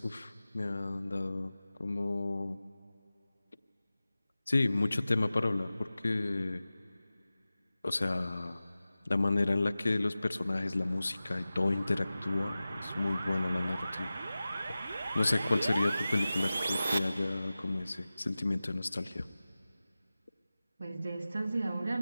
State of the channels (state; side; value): inverted; both; correlation -0.96